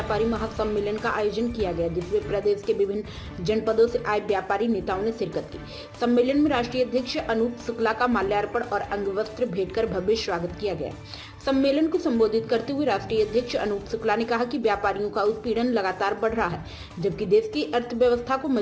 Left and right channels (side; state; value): both; identical; correlation 1.00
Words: महासम्मेलन का आयोजन किया गया, जिसमें प्रदेश के विभिन्न जनपदों से आए व्यापारी नेताओं ने शिरकत की। सम्मेलन में राष्ट्रीय अध्यक्ष अनूप शुक्ला का माल्यार्पण और अंगवस्त्र भेंट कर भव्य स्वागत किया गया। सम्मेलन को संबोधित करते हुए राष्ट्रीय अध्यक्ष अनूप शुक्ला ने कहा कि व्यापारियों का उत्पीड़न लगातार बढ़ रहा है, जबकि देश की अर्थव्यवस्था को